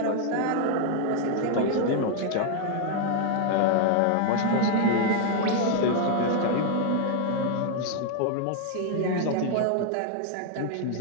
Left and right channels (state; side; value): different; both; correlation 0.00